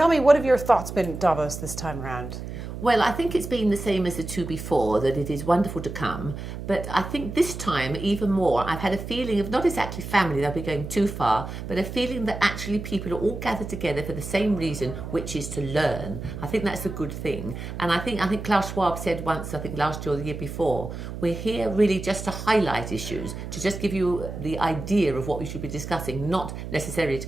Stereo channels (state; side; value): noise; right; hum, 8 dB below the sound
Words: me, what have your thoughts been at Davos this time around? Well, I think it's been the same as the two before, that it is wonderful to come. But I think this time, even more, I've had a feeling of not exactly family, they'll be going too far, but a feeling that actually people are all gathered together for the same reason, which is to learn. I think that's a good thing. And I think Klaus Schwab said once, I think last year or the year before, we're here really just to highlight issues, to just give you the idea of what we should be discussing, not necessarily to